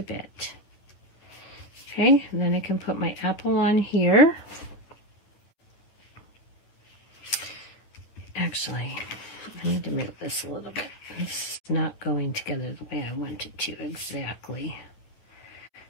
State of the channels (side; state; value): right; late; 9.8 ms